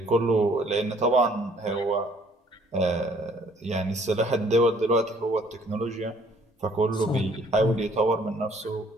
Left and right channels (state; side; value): normal; both; correlation 0.60